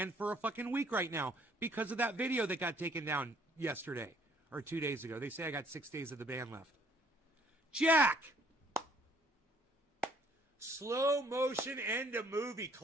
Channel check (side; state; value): both; normal; correlation 0.61